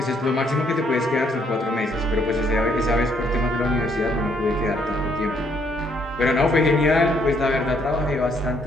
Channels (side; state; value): both; normal; correlation 0.69